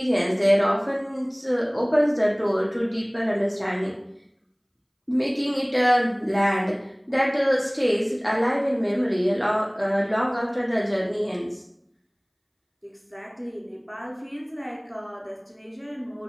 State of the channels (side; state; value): both; identical; correlation 1.00